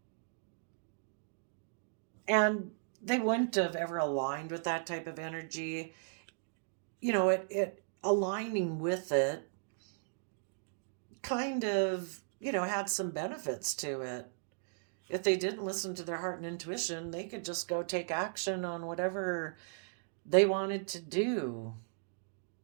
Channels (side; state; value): left; silent; digital silence